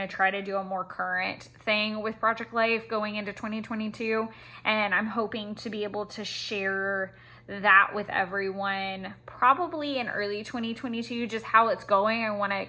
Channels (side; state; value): both; identical; correlation 1.00